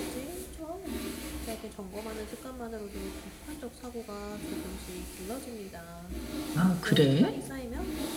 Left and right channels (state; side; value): identical; both; correlation 1.00